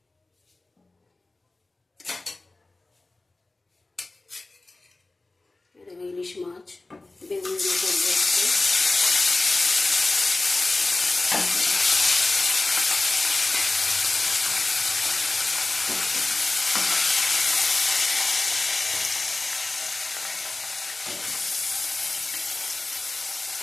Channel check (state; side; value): quieter; right; 3.1 dB